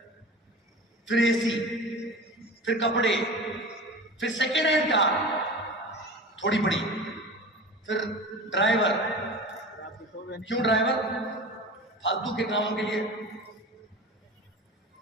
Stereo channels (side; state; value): both; normal; correlation 0.33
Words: फिर एसी, फिर कपड़े, फिर सेकेंड हैंड कार थोड़ी बड़ी, फिर ड्राइवर, क्यों ड्राइवर? फालतू के कामों के लिए।